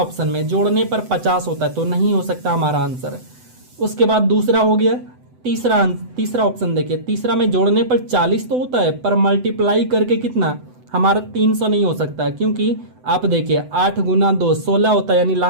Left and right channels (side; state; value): left; late; 7.9 ms